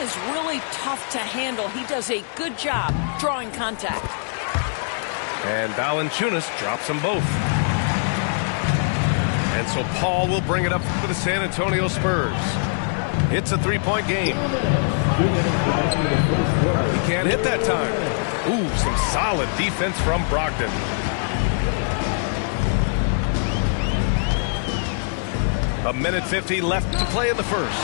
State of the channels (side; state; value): right; silent; digital silence